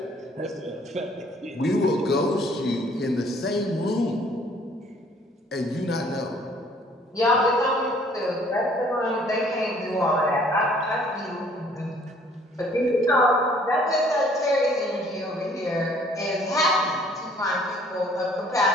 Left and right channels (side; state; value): both; normal; correlation 0.58